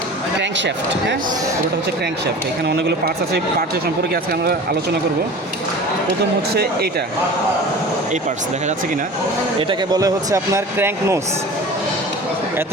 ক্র্যাঙ্কশ্যাফট, হ্যাঁ, পুরোটা হচ্ছে ক্র্যাঙ্কশ্যাফট। এখানে অনেকগুলো পার্টস আছে, পার্টসের সম্পর্কে আজকে আমরা আলোচনা করব। প্রথম হচ্ছে এইটা, এই পার্টস দেখা যাচ্ছে কি না, এটাকে বলে হচ্ছে আপনার ক্র্যাঙ্ক নোস।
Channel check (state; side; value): normal; both; correlation 0.38